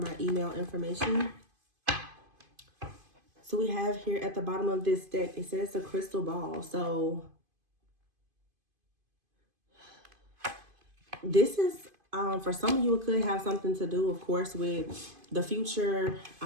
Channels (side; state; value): left; late; 2.5 ms